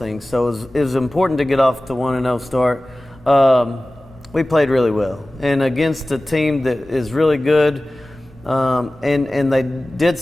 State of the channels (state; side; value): normal; both; correlation 0.97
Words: So it was important to get off to 1-0 start. We played really well, and against a team that is really good, and they did